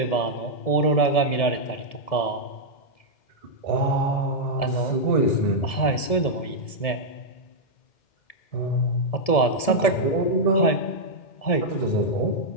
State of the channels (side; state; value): right; late; 1.7 ms